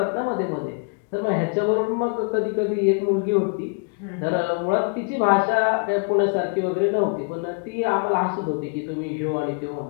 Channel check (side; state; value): right; quieter; 35.4 dB